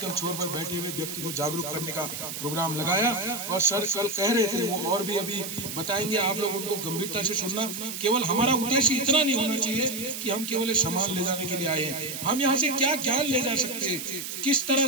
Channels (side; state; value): right; noise; hiss, 7 dB below the sound